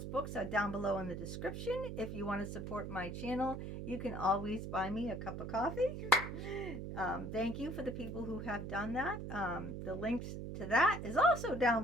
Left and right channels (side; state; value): right; noise; hum, 6 dB below the sound